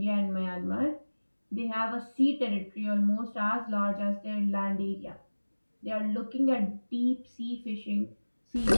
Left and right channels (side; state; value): both; inverted; correlation -1.00